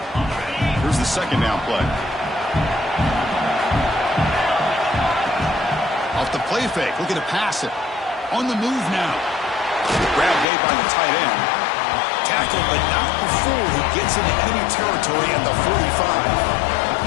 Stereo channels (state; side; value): drops out; right; at 10.5 s